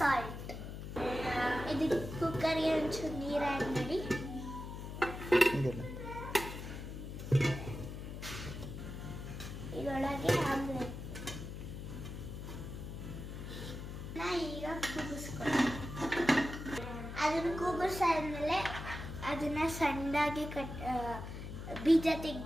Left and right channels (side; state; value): left; noise; hum, 8 dB below the sound